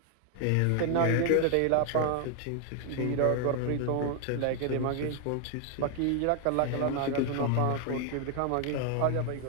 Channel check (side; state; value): both; different; correlation 0.00